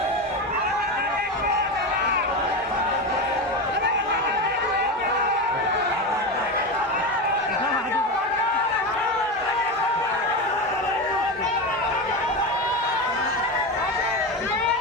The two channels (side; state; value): both; normal; correlation 0.19